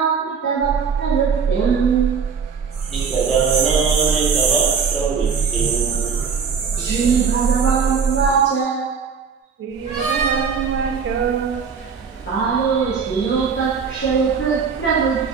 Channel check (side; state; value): left; quieter; 6.0 dB